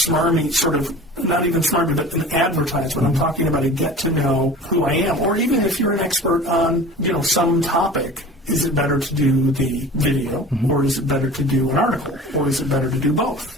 sort of, not even smarmy, but an advertisement. I'm talking about a get to know who I am. Or even if you're an expert on, some topic, is it better to do the video, or is it better to do an article, or is it better to do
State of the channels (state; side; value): normal; both; correlation 0.40